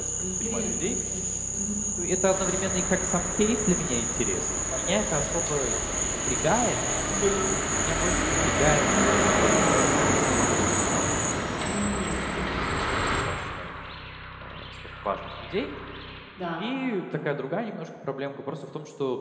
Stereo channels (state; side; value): identical; both; correlation 1.00